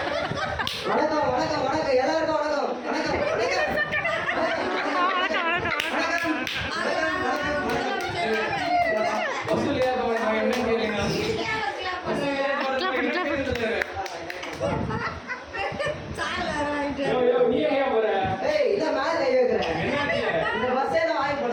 வணக்கம் வணக்கம் வணக்கம் எல்லாருக்கும் வணக்கம் வணக்கம் வசூலியா போய் என்ன கேளுங்க. நீ எங்க போற? ஏய் இத மேல கை வைக்கிறேன். என்னாச்சு? இந்த பஸ்ஸே நான் வாங்கி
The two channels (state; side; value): identical; both; correlation 1.00